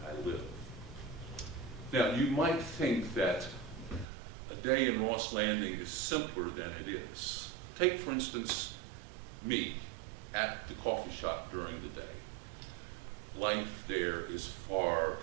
I live. Now, you might think that a day in Ross Landing is simpler than it is. Take, for instance, me at the coffee shop during the day. Life there is far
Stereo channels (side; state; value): left; drops out; at 4.0 s